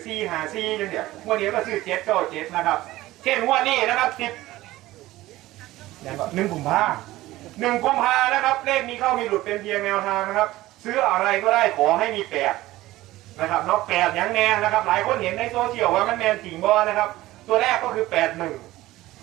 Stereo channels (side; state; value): left; quieter; 17.0 dB